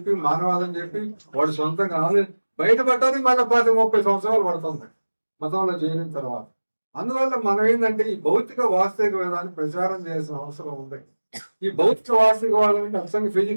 మానవాదం చెప్పి, వాడు సొంతంగా బయటపడటానికి మళ్ళీ 30 సంవత్సరాలు పడుతుంది మతంలో చేరిన తర్వాత. అందువల్ల మనం ఏంటంటే ఈ భౌతిక వాస్తవిక వేదాన్ని ప్రచారం చేయాల్సిన అవసరం ఉంది. ఈ భౌతిక వాస్తవికవాదం అంటే అసలు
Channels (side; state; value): both; inverted; correlation -1.00